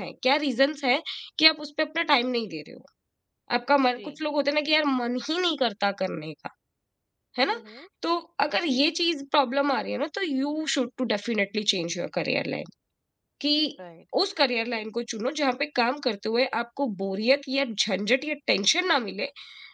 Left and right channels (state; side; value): identical; both; correlation 1.00